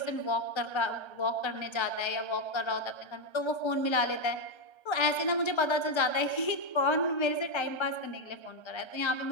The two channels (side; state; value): right; late; 1.3 ms